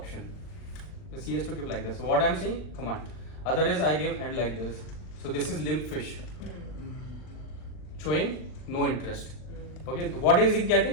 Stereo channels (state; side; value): late; right; 39 ms